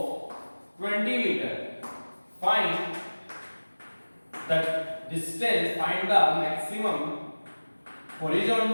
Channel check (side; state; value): both; inverted; correlation -1.00